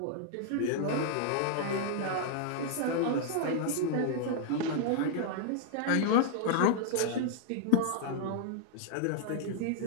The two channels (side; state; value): both; different; correlation -0.01